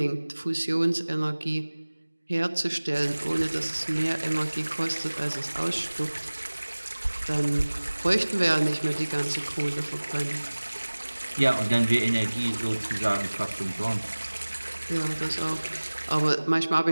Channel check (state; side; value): inverted; both; correlation -1.00